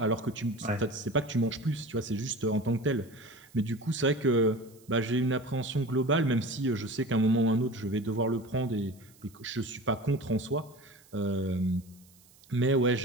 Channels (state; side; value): noise; right; hiss, 27 dB below the sound